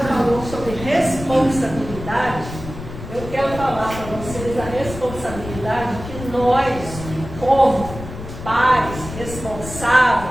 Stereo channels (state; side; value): noise; left; rumble, 11 dB below the sound